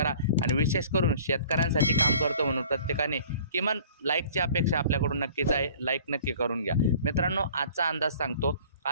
आणि विशेष करून शेतकऱ्यांसाठी काम करतो म्हणून प्रत्येकाने किमान लाईकची अपेक्षा आपल्याकडून नक्कीच आहे। लाईक नक्की करून घ्या। मित्रांनो, आजचा अंदाज सांगतो।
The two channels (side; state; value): both; inverted; correlation -0.49